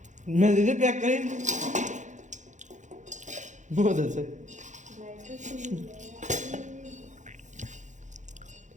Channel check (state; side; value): late; left; 0.35 ms